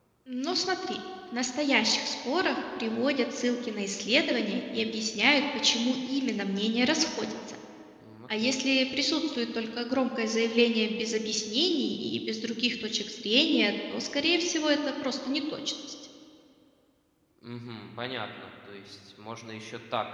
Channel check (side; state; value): both; identical; correlation 1.00